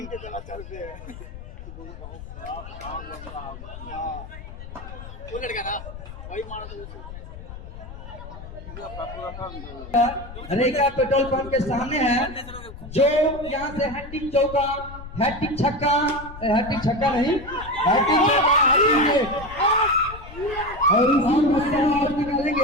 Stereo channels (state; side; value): noise; left; rumble, 13 dB below the sound